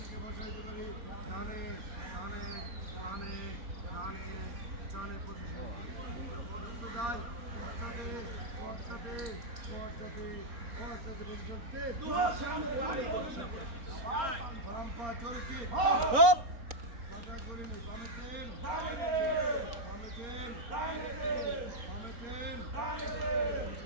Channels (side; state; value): left; late; 4.3 ms